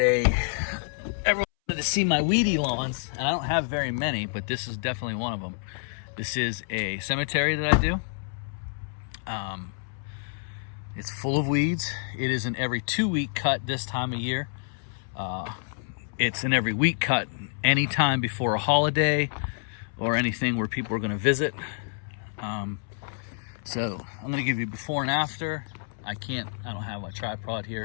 wanted to see my weedy lawns, and I don't have very many, but this is definitely one of them. This is a cemetery that I do. It's full of weeds. It is an every 2-week cut this time of year. It's an every week cut anytime before a holiday or anything where people are going to visit. So I'm going to give you before and after. I don't have my tripod here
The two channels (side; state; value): right; silent; 59 dB below the other